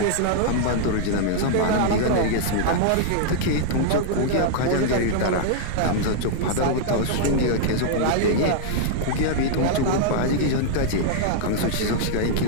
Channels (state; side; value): different; both; correlation -0.01